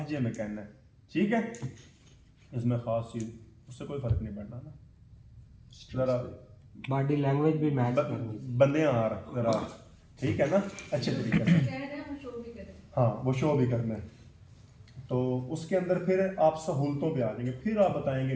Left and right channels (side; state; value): both; identical; correlation 1.00